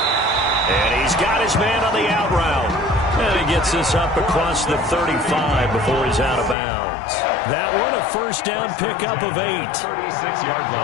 And he's got his man on the out route. And he gets this up across the 35 before he's out of bounds. That one a first down pickup of 8. 36-yard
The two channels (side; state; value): right; drops out; at 6.6 s